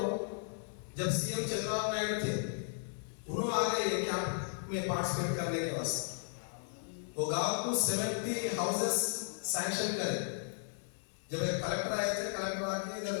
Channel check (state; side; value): silent; right; digital silence